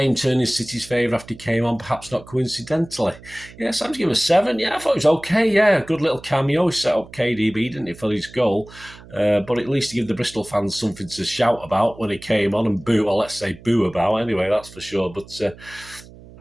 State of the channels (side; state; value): right; noise; hum, 20 dB below the sound